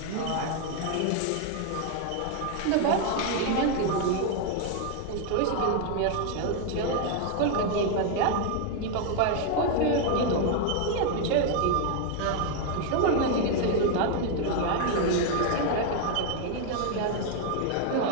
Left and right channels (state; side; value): different; both; correlation 0.01